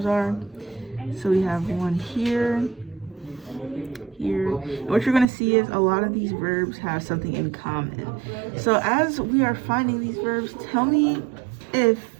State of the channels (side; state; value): left; drops out; at 5.2 s